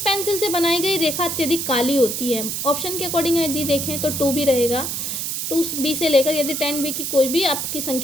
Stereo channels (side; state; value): right; noise; hiss, 3 dB below the sound